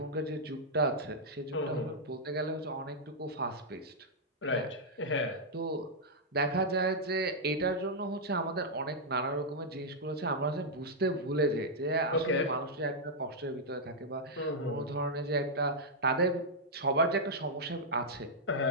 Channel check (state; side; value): normal; both; correlation -0.06